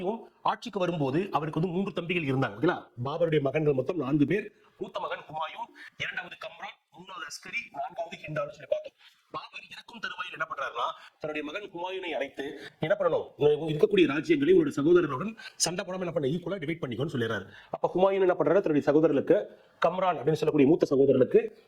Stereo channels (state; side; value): identical; both; correlation 1.00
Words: ஆட்சிக்கு வரும்போது அவருக்கு வந்து 3 தம்பிகள் இருந்தாங்க. ஓகேங்களா? பாபருடைய மகன்கள் மொத்தம் 4 பேர். மூத்த மகன் ஹுமாயூன், இரண்டாவது கம்ரான், மூணாவது அஸ்கரி, நான்காவது ஹிண்டால்னு சொல்லி பார்த்தோம். பாபர் இறக்கும் தருவாயில் என்ன பண்றாருன்னா தன்னுடைய மகன் ஹுமாயூனை அழைத்து என்ன பண்ணணும், இருக்கக்கூடிய ராஜ்யங்களை உங்களுடைய சகோதரனுடன் சண்டை போடாம என்ன பண்ண ஈக்குவலா டிவைட் பண்ணிக்கோன்னு சொல்லிடுறாரு. அப்ப ஹுமாயூன் என்ன பண்றாரு, தன்னுடைய சகோதரர்களுக்கு கம்ரான் அப்படின்னு சொல்லக்கூடிய மூத்த சகோதரனுக்கு